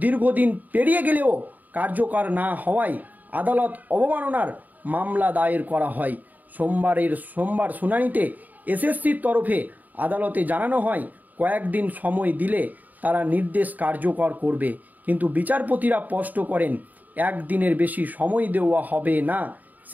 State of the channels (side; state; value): left; late; 0.082 ms